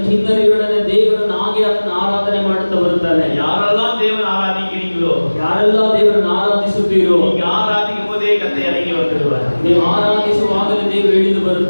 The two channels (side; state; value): both; inverted; correlation -1.00